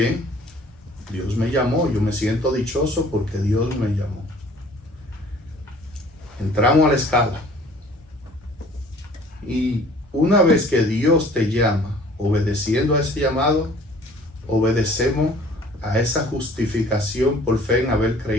Dios me llamó, yo me siento dichoso porque Dios me llamó. Entramos a la escala. Y una vez que Dios te llama, obedeciendo a ese llamado, obedecemos a esa justificación por fe en haber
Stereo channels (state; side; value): normal; both; correlation 0.52